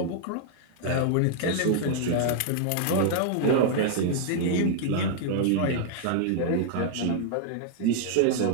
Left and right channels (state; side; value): different; both; correlation -0.01